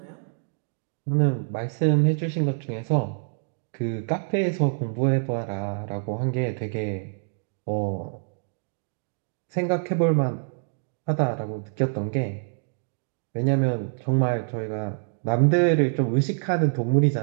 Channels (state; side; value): silent; left; digital silence